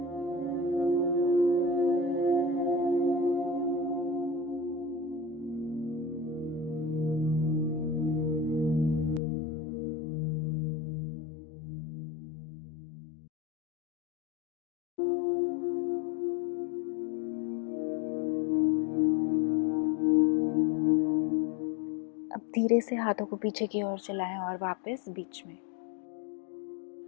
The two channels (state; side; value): drops out; right; at 9.2 s